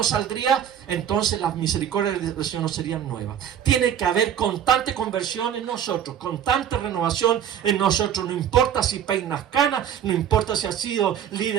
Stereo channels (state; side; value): quieter; left; 9.4 dB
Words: saldría, entonces las misericordias del Señor no serían nuevas. Tiene que haber constante conversión en nosotros, constante renovación en nosotros. No importa si peinas canas, no importa si has sido